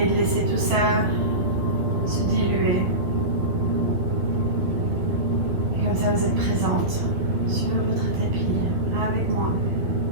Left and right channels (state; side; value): late; left; 12 ms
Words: de laisser tout ça se diluer. Et comme ça, vous êtes présente sur votre tapis avec moi.